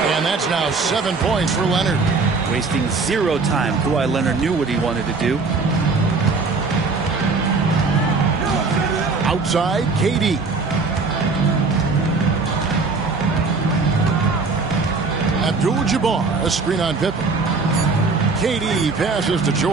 And that's now 7 points for Leonard. Wasting 0 time. Kawhi Leonard knew what he wanted to do. Outside, KD. Abdul-Jabbar, a screen on Pippen. KD passes to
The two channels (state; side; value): quieter; left; 4.2 dB